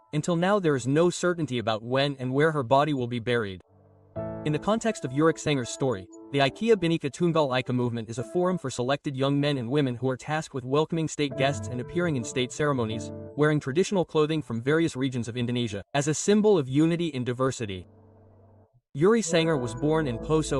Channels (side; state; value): both; identical; correlation 1.00